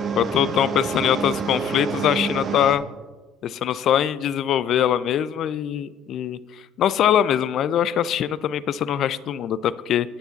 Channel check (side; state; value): right; quieter; 7.4 dB